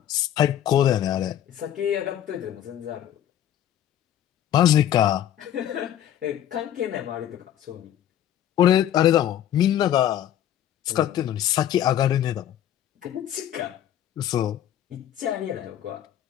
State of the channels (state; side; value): quieter; right; 11.2 dB